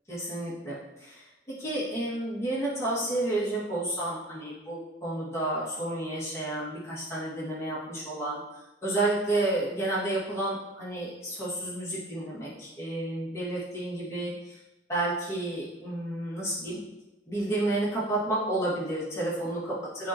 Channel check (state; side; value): normal; both; correlation 0.42